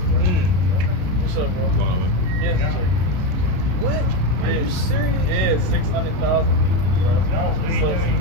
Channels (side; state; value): left; late; 32 ms